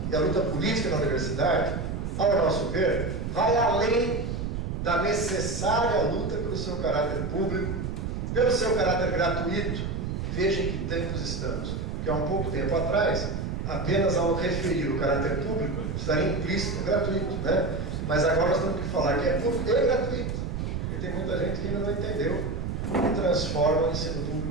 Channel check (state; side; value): noise; right; rumble, 3 dB below the sound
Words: e a luta política na universidade, ao nosso ver, vai além da necessária luta pelo seu caráter público, pelo seu caráter gratuito. Vejam que tempos estamos, que há um pouco tempo atrás, apenas ao referir o caráter público, estaria implícito gratuito, né? Mas agora nós temos que falar que é público e gratuito, porque tem muita gente que ainda não entendeu e transforma o ensino